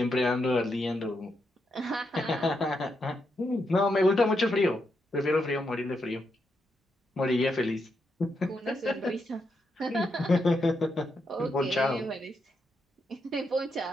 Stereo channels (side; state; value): both; normal; correlation 0.82